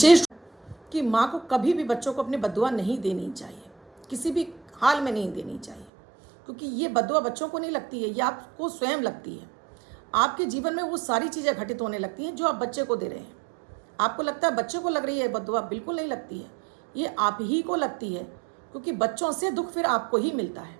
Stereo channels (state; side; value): drops out; left; at 5.9 s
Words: कि माँ को कभी भी बच्चों को अपनी बद्दुआ नहीं देनी चाहिए, किसी भी हाल में नहीं देनी चाहिए, क्योंकि ये बद्दुआ बच्चों को नहीं लगती है, ये आपको स्वयं लगती है। आपके जीवन में वो सारी चीज़ें घटित होने लगती हैं जो आप बच्चे को दे रहे हैं। आपको लगता है बच्चे को लग रही है बद्दुआ, बिल्कुल नहीं लगती है, ये आप ही को लगती है, क्योंकि बच्चों से दुख फिर आपको ही मिलता